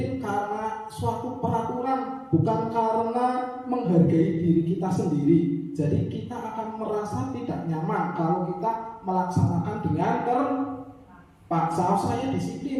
karena suatu peraturan, bukan karena menghargai diri kita sendiri. Jadi kita akan merasa tidak nyaman kalau kita melaksanakan dengan terpaksa. Saya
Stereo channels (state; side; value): identical; both; correlation 1.00